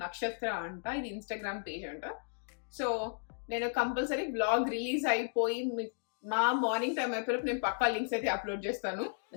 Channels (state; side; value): silent; right; digital silence